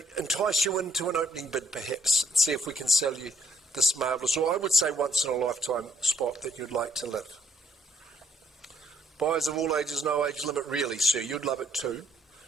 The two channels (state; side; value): normal; both; correlation 0.69